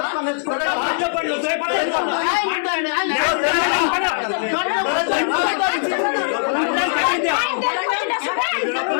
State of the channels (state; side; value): silent; right; digital silence